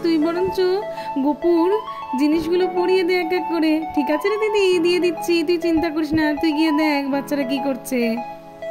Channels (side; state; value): both; identical; correlation 1.00